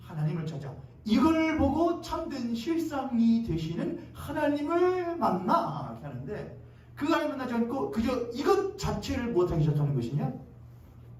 찾아. 이걸 보고 참된 실상이 되시는 하나님을 만나 이렇게 하는데, 그 하나님 만나지 않고 그저 이것 자체를 못하기 시작하는 것이냐?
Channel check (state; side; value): identical; both; correlation 1.00